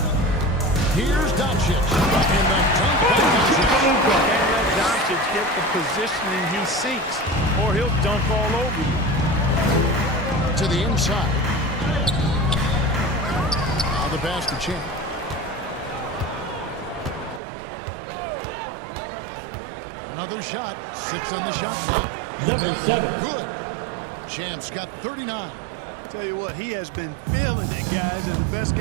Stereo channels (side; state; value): left; drops out; at 17.4 s